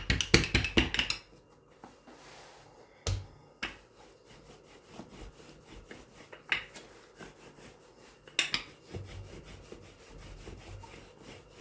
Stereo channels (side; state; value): both; identical; correlation 1.00